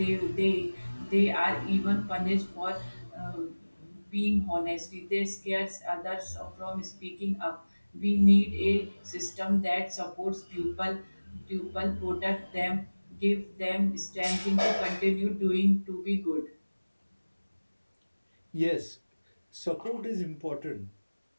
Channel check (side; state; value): both; inverted; correlation -1.00